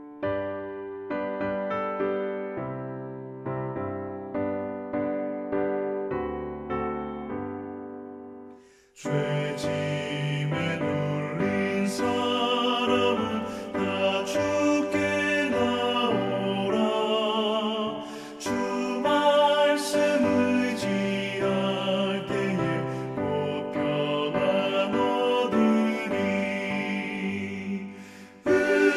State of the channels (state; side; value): identical; both; correlation 1.00